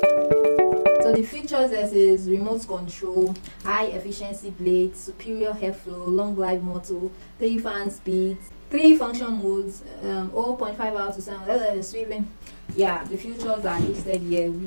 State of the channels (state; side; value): inverted; both; correlation -1.00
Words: So the features is remote control, high efficiency blades, superior airflow, long life motor, 3 fan speeds, 3 function modes, 0.5 hours to 7 sweeping. Yeah, the features are listed here,